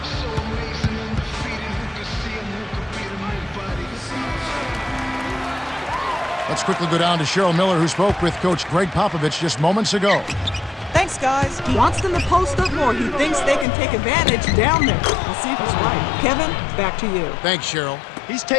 Let's quickly go down to Cheryl Miller, who spoke with Coach Greg Popovich just moments ago. Thanks, guys. He wants them to post up more. He thinks they can take advantage down there. We'll see if he's right. Kevin, back to you. Thanks, Cheryl. He's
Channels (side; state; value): right; drops out; at 13.7 s